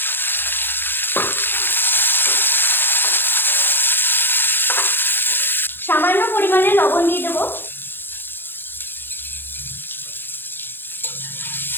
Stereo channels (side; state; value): right; late; 0.10 ms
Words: সামান্য পরিমাণে লবণ দিয়ে দেবো।